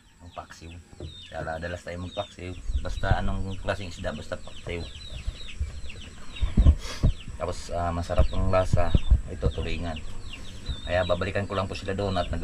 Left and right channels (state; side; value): identical; both; correlation 1.00